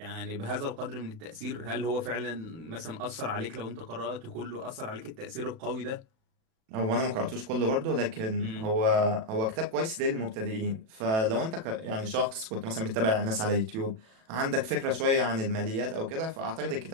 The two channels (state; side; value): late; left; 36 ms